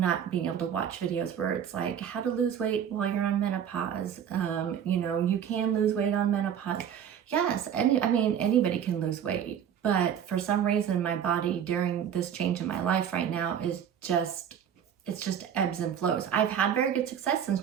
being able to watch videos where it's like how to lose weight while you're on menopause. You know, you can lose weight on menopause. Yes, anybody can lose weight. But for some reason, my body during this change in my life right now is just ebbs and flows. I've had very good success since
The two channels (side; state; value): left; quieter; 8.8 dB